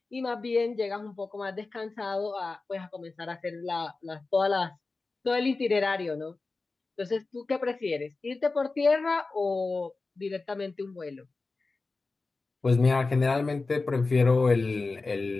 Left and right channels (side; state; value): right; quieter; 3.7 dB